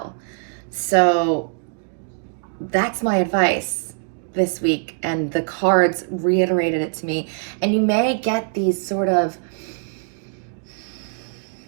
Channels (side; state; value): left; silent; 57 dB below the other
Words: So that's my advice this week, and the cards reiterated it to me. And you may get these sort of